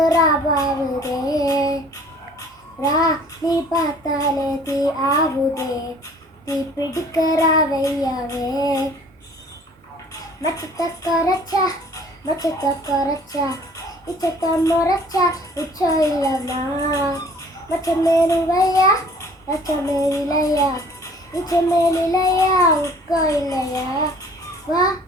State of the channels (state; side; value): normal; both; correlation 0.52